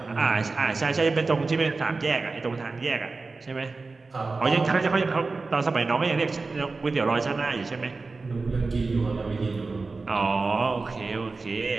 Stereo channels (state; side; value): quieter; left; 3.8 dB